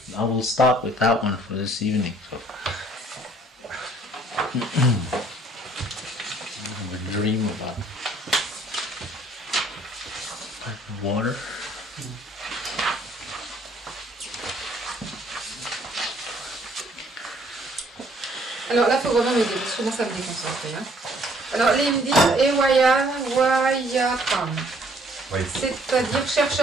I will stop with that one for this evening. I have a dream about water. Alors là, il faut vraiment m'aider, parce que comment ça me déconcentrer. Alors, là, il me dit Wayatram. C'est-à-dire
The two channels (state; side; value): normal; both; correlation 0.61